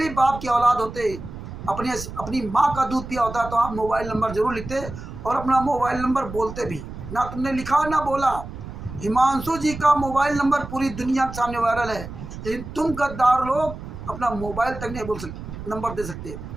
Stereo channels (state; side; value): noise; right; rumble, 11 dB below the sound